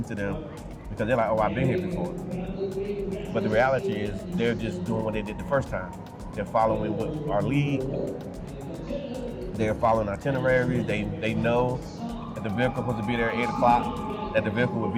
to them because they're like, oh, I've been here before. But the reality is they're just doing what they did the first time. They're following our lead. They're following itineraries. They know that the vehicle is supposed to be there at 8 o'clock, that the vehicle will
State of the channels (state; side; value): identical; both; correlation 1.00